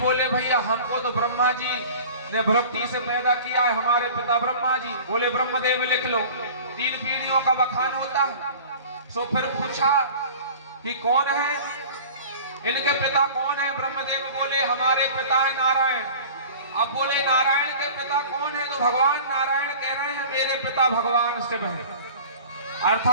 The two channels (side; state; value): both; inverted; correlation -0.41